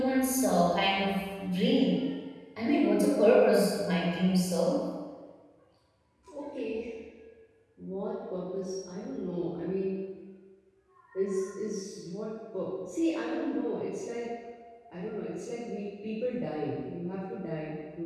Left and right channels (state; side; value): identical; both; correlation 1.00